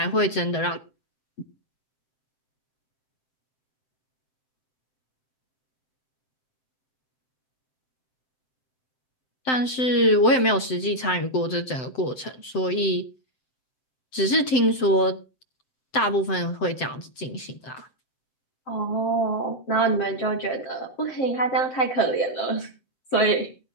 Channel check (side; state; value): right; late; 7.8 ms